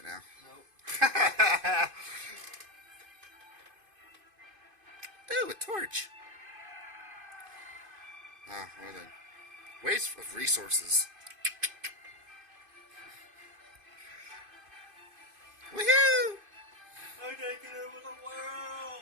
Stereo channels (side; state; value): left; late; 2.5 ms